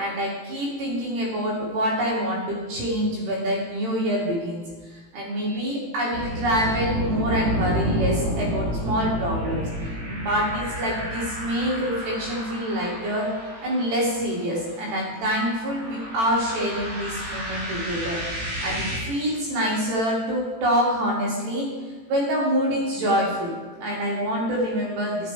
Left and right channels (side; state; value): left; late; 18 ms